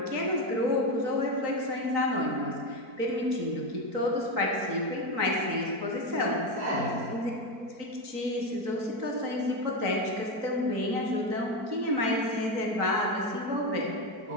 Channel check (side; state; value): left; late; 4.5 ms